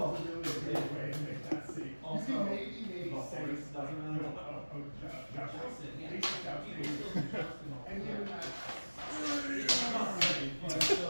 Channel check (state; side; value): inverted; both; correlation -1.00